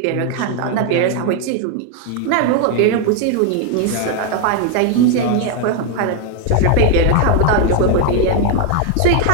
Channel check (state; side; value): different; both; correlation 0.01